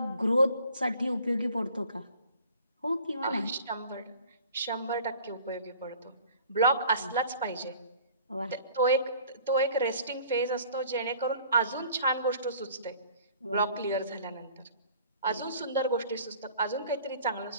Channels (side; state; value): both; inverted; correlation -0.50